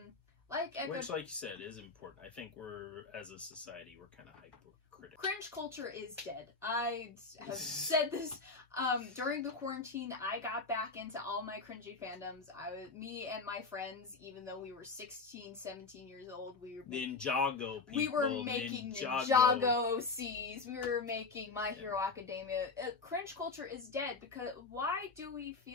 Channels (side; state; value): right; quieter; 4.2 dB